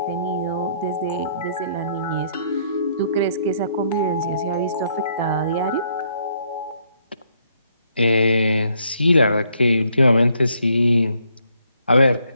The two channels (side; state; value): both; inverted; correlation -0.70